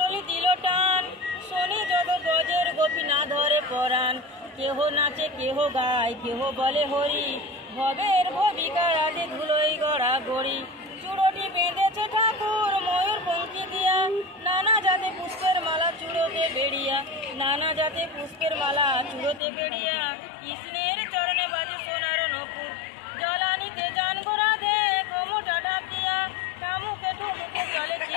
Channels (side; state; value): right; drops out; at 19.4 s